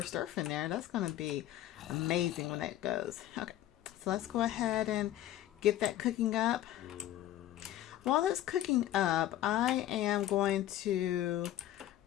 Earth in there. That's going to be amazing when that goes. Okay. So let's go ahead and get that cooking up. While that's cooking up, I am going to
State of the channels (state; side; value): quieter; right; 13.2 dB